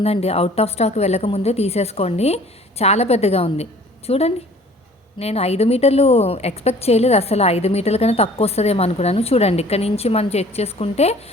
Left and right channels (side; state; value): both; normal; correlation 0.51